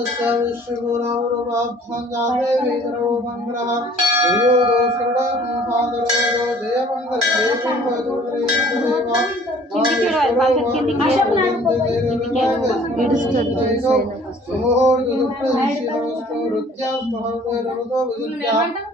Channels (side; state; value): both; normal; correlation 0.53